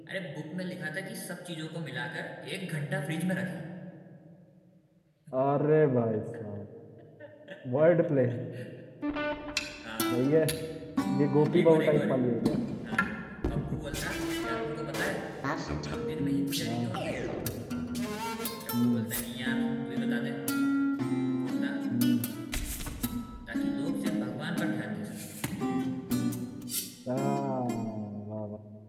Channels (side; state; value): both; identical; correlation 1.00